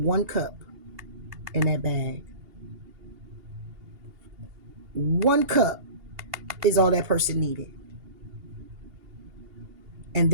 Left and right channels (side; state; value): left; late; 2.8 ms